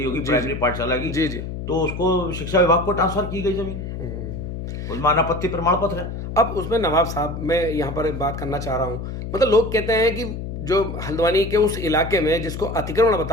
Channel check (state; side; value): noise; left; hum, 7 dB below the sound